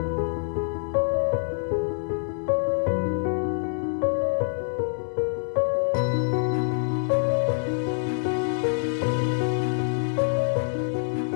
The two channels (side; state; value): right; silent; digital silence